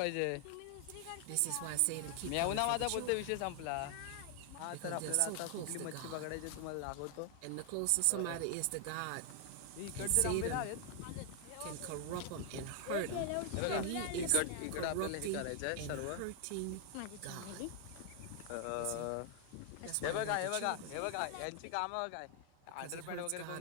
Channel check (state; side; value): different; both; correlation 0.00